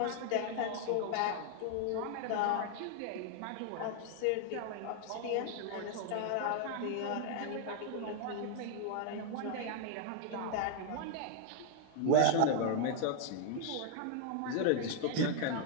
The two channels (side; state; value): both; different; correlation 0.00